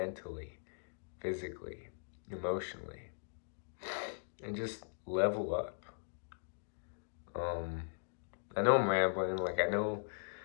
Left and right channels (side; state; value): right; silent; digital silence